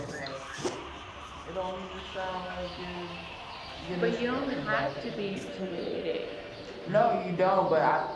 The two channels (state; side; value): identical; both; correlation 1.00